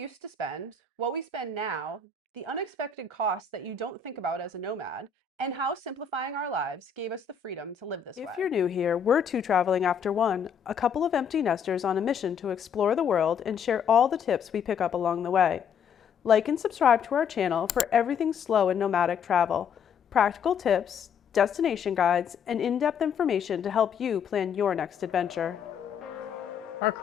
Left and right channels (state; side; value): quieter; right; 6.8 dB